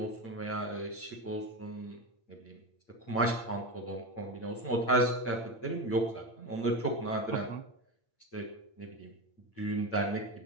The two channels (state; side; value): late; right; 8.8 ms